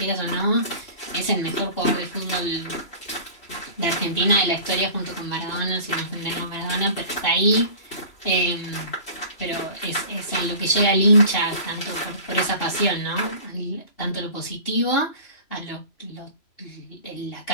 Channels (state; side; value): late; right; 3.0 ms